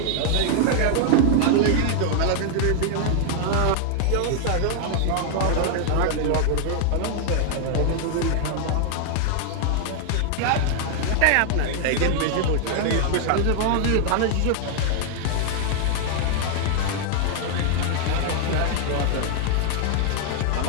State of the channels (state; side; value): different; both; correlation 0.00